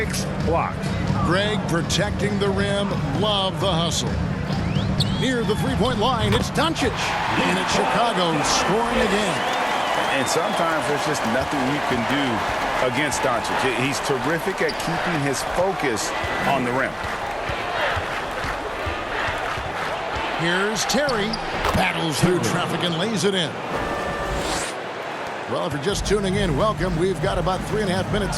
blocks. Greg protecting the rim. Love the hustle. Near the three-point line, it's Doncic. And it's Chicago scoring again. And sometimes there's just nothing you can do against Doncic. He's terrific at keeping his focus on the rim. Here's Terry. Battles through traffic and lays it in. Well, if you're just tuning in, welcome. We've got about 3.5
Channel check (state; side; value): identical; both; correlation 1.00